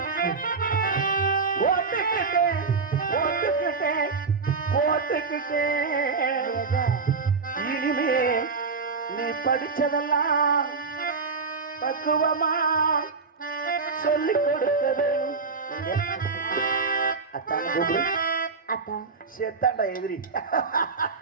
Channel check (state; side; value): quieter; left; 4.6 dB